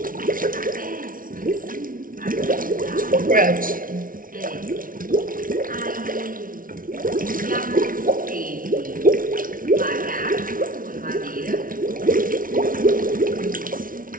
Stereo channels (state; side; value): late; left; 0.40 ms